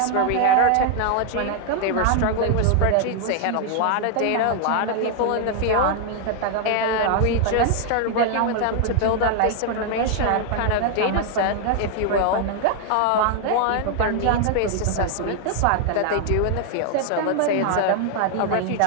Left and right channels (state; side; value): different; both; correlation 0.00